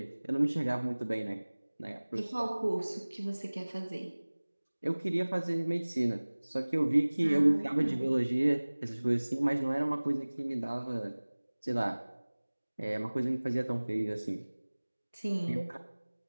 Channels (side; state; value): both; inverted; correlation -1.00